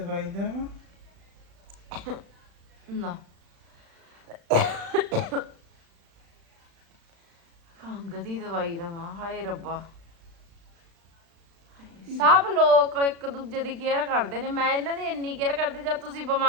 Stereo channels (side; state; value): left; late; 35 ms